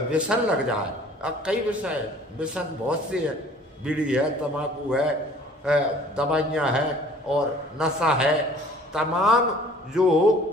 व्यसन लग जाए। अब कई विषय व्यसन बहुत से है, बीड़ी है, तम्बाकू है, दवाइयाँ हैं और नशा है। तमाम जो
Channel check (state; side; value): normal; both; correlation 0.51